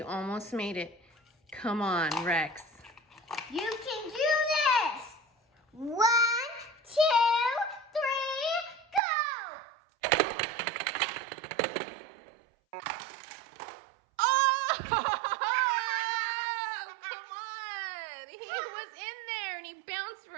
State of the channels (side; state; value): left; drops out; at 9.0 s